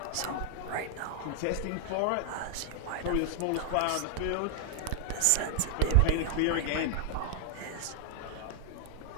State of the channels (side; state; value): both; different; correlation 0.00